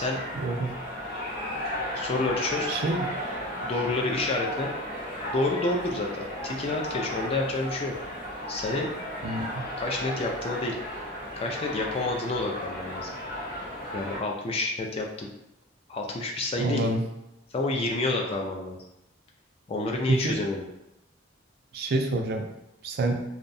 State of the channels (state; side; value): normal; both; correlation 0.35